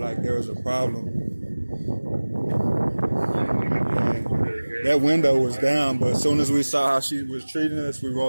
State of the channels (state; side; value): inverted; both; correlation -1.00